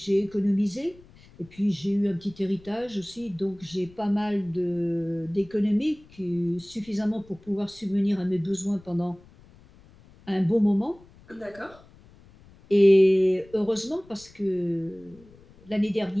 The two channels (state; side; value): noise; left; rumble, 25 dB below the sound